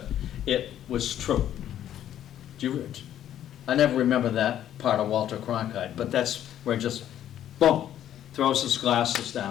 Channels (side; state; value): right; quieter; 11.1 dB